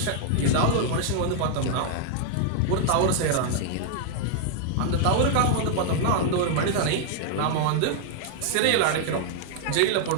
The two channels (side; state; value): both; different; correlation 0.00